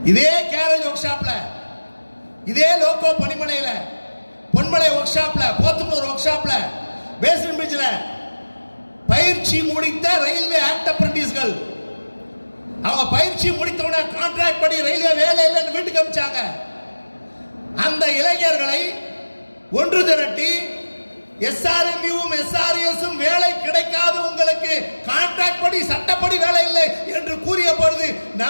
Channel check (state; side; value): inverted; both; correlation -1.00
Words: இதே கேரேஜ் ஒர்க் ஷாப்ல, இதே லோகோ பணிமனையில, பொன்மலை ஒர்க் ஷாப்ல, போத்தனூர் ஒர்க் ஷாப்ல, பேஸ்மென்ட் பிரிட்ஜ்ல பயிற்சி முடித்த ரயில்வே ஆக்ட் அப்ரண்டிஸ்கள் அவங்க பயிற்சி முடித்தவன கான்ட்ராக்ட் படி ரயில்வே வேலை இல்லைன்னு வீட்டுக்கு அனுப்பிச்சாங்க. அந்த இளைஞர்களை ஒன்று திரட்டி எஸ்ஆர்எம்யூவும் எஸ்ஆர்எஸும் வேலை கிடைக்காது, உங்களுக்கு கான்ட்ராக்ட் படி சட்டப்படி வேலை இல்லை என்று கூறிய பொழுது